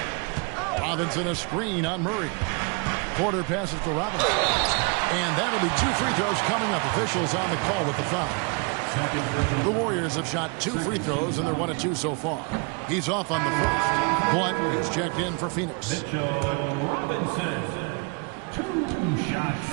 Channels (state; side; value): quieter; left; 32.4 dB